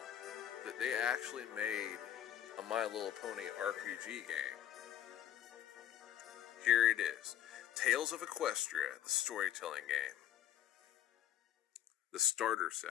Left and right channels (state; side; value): quieter; right; 11.1 dB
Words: that they actually made a My Little Pony RPG game? Here it is. Tales of Equestria, the storytelling game. The starter